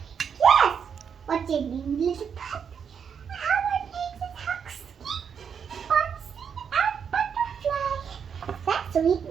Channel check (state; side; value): quieter; left; 7.1 dB